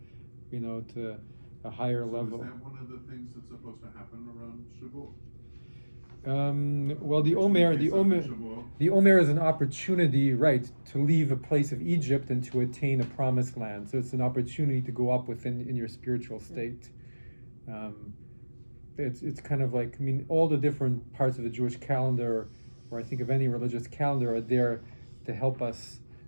to a higher level. Is that one of the things that's supposed to happen around Shavuot? Well, the Omer is an opportunity, right, to leave a place of Egypt and to attain a promised land. So it's an opportunity to go up in your spiritual state. It's kind of like, all the different parts of the Jewish calendar, or I think of any religious calendar, are there to help us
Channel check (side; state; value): both; inverted; correlation -1.00